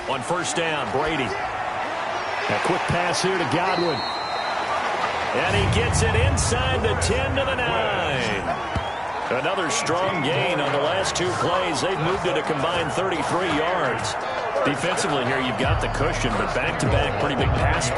On 1st down, Brady. A quick pass here to Godwin. And he gets it inside the 10 to the 9. Another strong gain on the last 2 plays. They've moved it a combined 33 yards. Defensively here, you've got the cushion, but back-to-back pretty big pass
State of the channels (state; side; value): identical; both; correlation 1.00